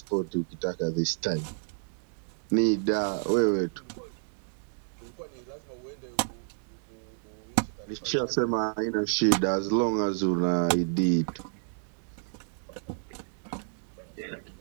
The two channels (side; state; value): left; silent; digital silence